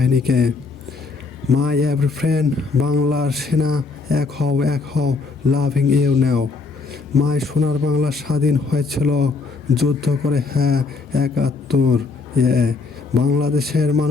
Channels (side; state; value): right; quieter; 4.2 dB